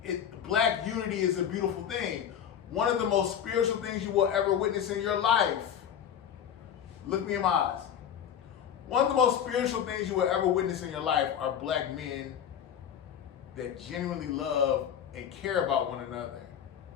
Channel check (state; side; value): quieter; right; 9.1 dB